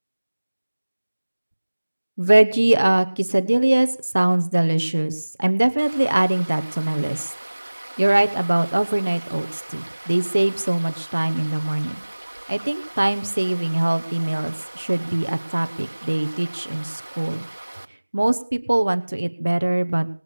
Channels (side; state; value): both; inverted; correlation -1.00